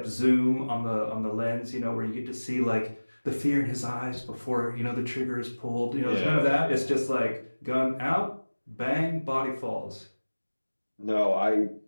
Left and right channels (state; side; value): inverted; both; correlation -1.00